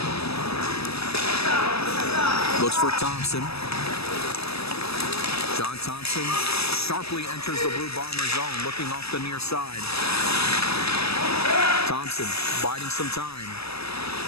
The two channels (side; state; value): right; late; 0.78 ms